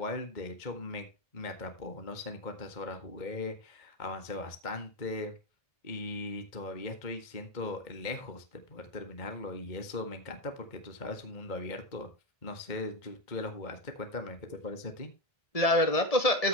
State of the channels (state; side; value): late; right; 2.1 ms